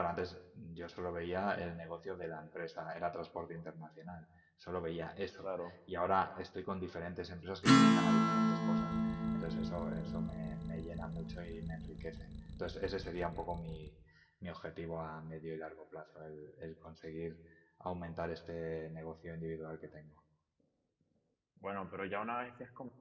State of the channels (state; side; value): identical; both; correlation 1.00